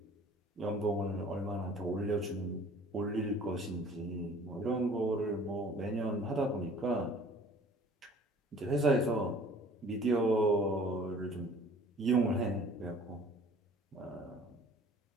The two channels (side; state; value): both; normal; correlation 0.50